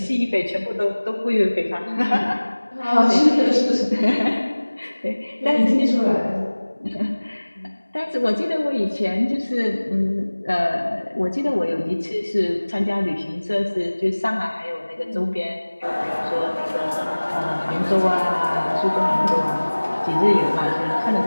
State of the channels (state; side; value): inverted; both; correlation -1.00